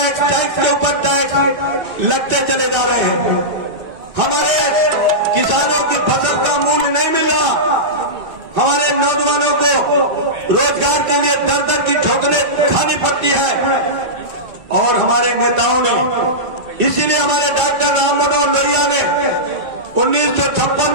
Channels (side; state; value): left; late; 2.7 ms